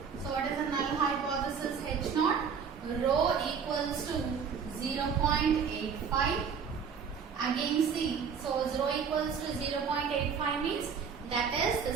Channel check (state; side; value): quieter; left; 6.5 dB